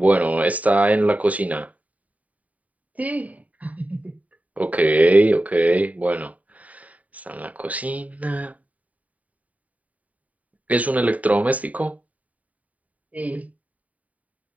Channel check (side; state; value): left; late; 0.070 ms